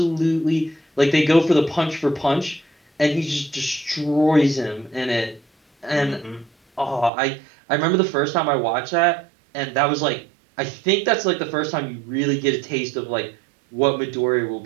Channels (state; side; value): drops out; left; at 7.1 s